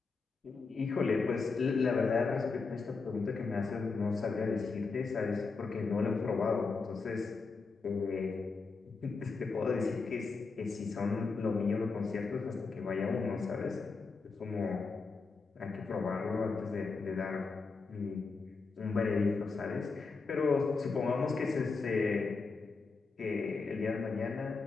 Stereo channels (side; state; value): right; quieter; 4.4 dB